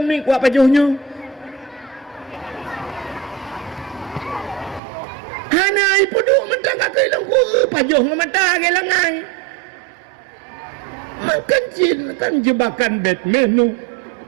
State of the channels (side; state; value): left; drops out; at 4.8 s